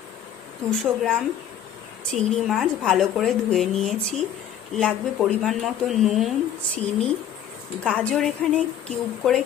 200 গ্রাম চিংড়ি মাছ ভালো করে ধুয়ে নিয়েছি। লাগবে পরিমাণ মতো নুন, চিনি, গাজর এখানে কিউব করে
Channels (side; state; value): right; quieter; 9.7 dB